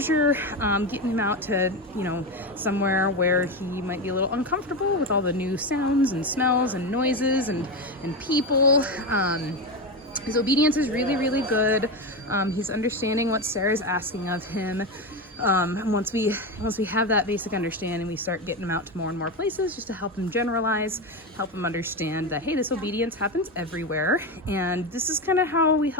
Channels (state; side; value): normal; both; correlation 0.16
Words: getting him out to, somewhere where he might be a little uncomfortable with all the new sounds and smells and noises and people. His obedience is really, really good. He's understanding what Sarah's asking of him. And once we have that basic understanding, we start getting him out to more and more places just to help him generalize, help him understand that, hey, this obedience happens everywhere. And this is kind of how we